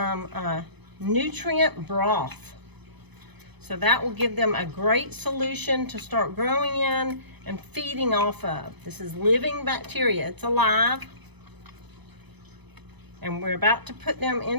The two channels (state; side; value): late; left; 0.99 ms